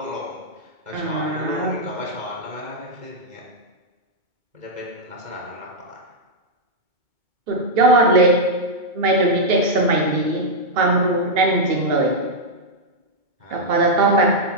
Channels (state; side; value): late; left; 2.2 ms